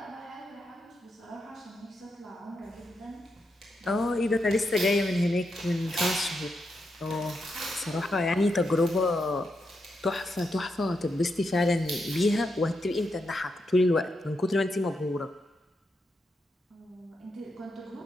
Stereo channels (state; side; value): normal; both; correlation 0.84